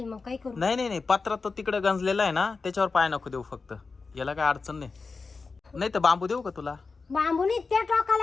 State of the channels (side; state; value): right; quieter; 4.4 dB